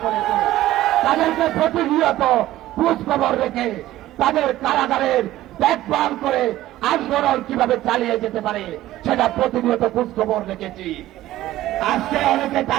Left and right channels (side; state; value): left; quieter; 14.9 dB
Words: করেছে তাদেরকে প্রতিনিয়ত খোঁজ খবর রেখে তাদের কারাগারের দেখভাল করে আন্দোলন কিভাবে চালিয়ে যেতে পারে সেটা প্রতিনিয়ত খোঁজ খবর রেখেছি। আজকে অনেকে